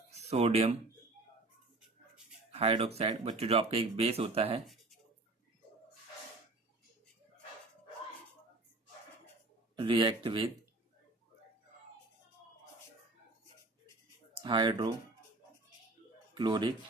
सोडियम हाइड्रोक्साइड। बच्चों जो आपका एक बेस होता है, रिएक्ट विद हाइड्रोक्लोरिक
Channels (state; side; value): quieter; left; 3.2 dB